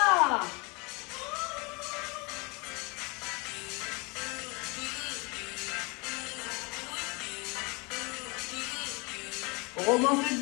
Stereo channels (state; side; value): quieter; right; 28.8 dB